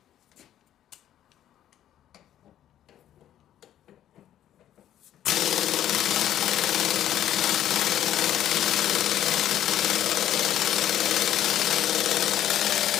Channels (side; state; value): right; quieter; 11.5 dB